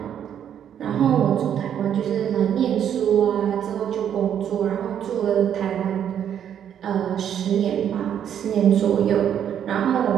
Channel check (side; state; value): left; quieter; 9.3 dB